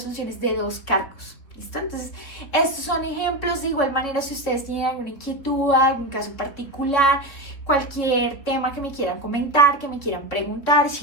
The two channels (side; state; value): right; late; 3.9 ms